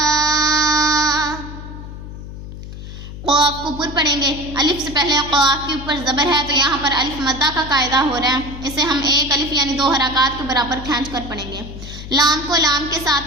قاف کو پر پڑھیں گے. الف سے پہلے قاف کے اوپر زبر ہے تو یہاں پر الف مدہ کا قاعدہ ہو رہا ہے. اسے ہم ایک الف یعنی 2 حرکات کے برابر کھینچ کر پڑھیں گے. لام کو لام کے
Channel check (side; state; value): left; noise; hum, 11 dB below the sound